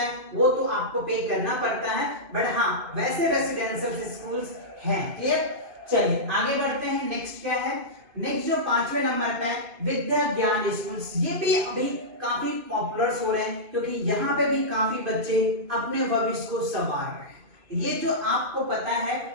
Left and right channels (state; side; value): late; left; 2.5 ms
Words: वो तो आपको पे करना पड़ता है, बट हाँ वैसे रेसिडेंशियल स्कूल्स हैं। क्लियर? चलिए आगे बढ़ते हैं। नेक्स्ट क्या है? नेक्स्ट जो 5वें नंबर पे है, विद्या ज्ञान स्कूल्स। ये भी अभी काफी पॉपुलर हो रहे हैं, क्योंकि यहाँ पे भी काफी बच्चे अपने भविष्य को संवार रहे हैं। ये जो आपको पता है